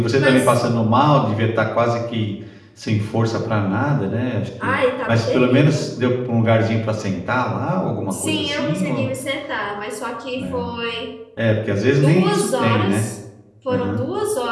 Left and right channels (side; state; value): both; identical; correlation 1.00